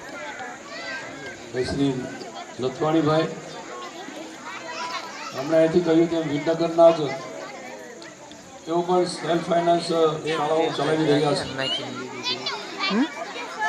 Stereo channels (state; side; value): identical; both; correlation 1.00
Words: શ્રી લથવાણીભાઈ, હમણાં અહીંથી કહ્યું તેમ વિદ્યાનગરના જ તેઓ પણ સેલ્ફ ફાઇનાન્સ શાળાઓ ચલાવી રહ્યા છે.